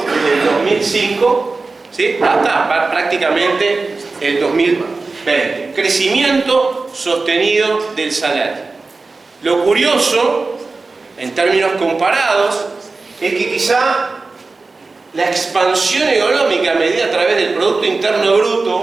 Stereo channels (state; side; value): quieter; left; 3.8 dB